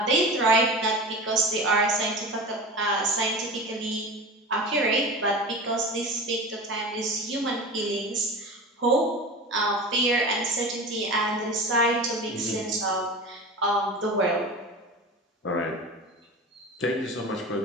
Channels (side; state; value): both; normal; correlation 0.31